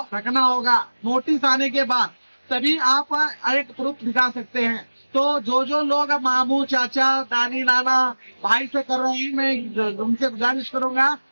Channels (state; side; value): inverted; both; correlation -1.00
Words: रखना होगा। नोटिस आने के बाद तभी आप एक प्रूफ दिखा सकते हैं। तो जो लोग मामू, चाचा, दानी, नाना, भाई से कर रहे हैं, मैं उनसे गुजारिश करूंगा,